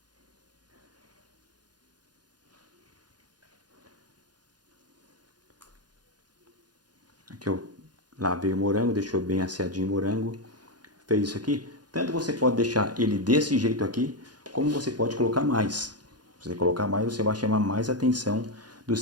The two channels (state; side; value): late; left; 0.69 ms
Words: Aqui eu lavei o morango, deixou bem asseadinho o morango. Fez isso aqui. Tanto você pode deixar ele desse jeito aqui, como você pode colocar mais. Se você colocar mais, você vai chamar mais atenção do